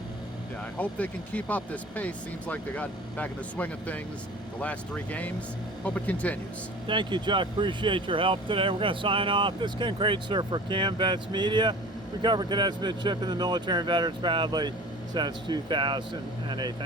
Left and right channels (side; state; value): both; normal; correlation 0.41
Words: Yeah, I hope they can keep up this pace. Seems like they got back in the swing of things the last 3 games. Hope it continues. Thank you, Chuck. Appreciate your help today. We're going to sign off. This is Ken Kraetzer for Cam Vets Media. We cover cadets, midship, and the military and veterans proudly since 2008.